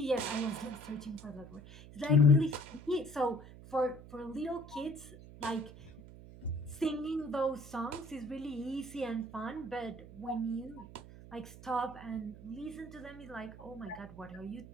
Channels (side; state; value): right; noise; hum, 16 dB below the sound